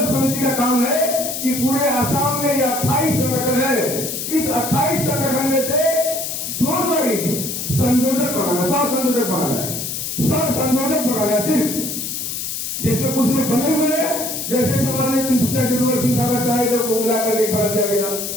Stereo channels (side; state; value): left; noise; hiss, 4 dB below the sound